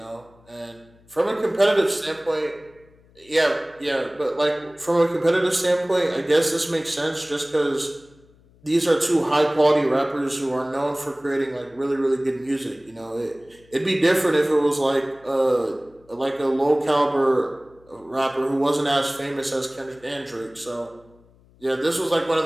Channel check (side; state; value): left; noise; hum, 29 dB below the sound